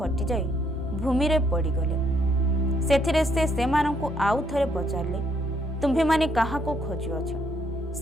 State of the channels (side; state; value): both; normal; correlation 0.71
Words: ଭୂମିରେ ପଡ଼ିଗଲେ। ସେଥିରେ ସେ ସେମାନଙ୍କୁ ଆଉ ଥରେ ପଚାରିଲେ, ତୁମ୍ଭେମାନେ କାହାକୁ ଖୋଜୁଅଛ?